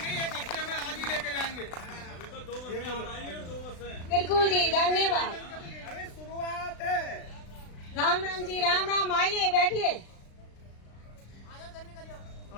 1 हफ्ते में आज ही लेके जाएंगे। अभी तो 2 बसें आ रही हैं और 2 बसें। बिल्कुल जी, धन्यवाद। अरे शुरुआत है। राम राम जी, राम राम। आइए बैठिए।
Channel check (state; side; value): late; right; 36 ms